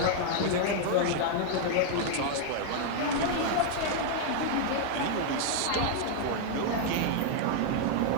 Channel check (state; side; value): different; both; correlation 0.00